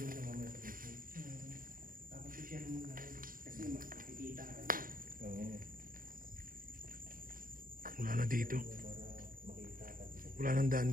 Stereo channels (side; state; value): left; late; 0.41 ms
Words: sa mga sa Facebook. Tapos i-share mo na rin. Kasi makikita ka rin. Oo. Wala na dito. Para makita ka dito. Wala nang daan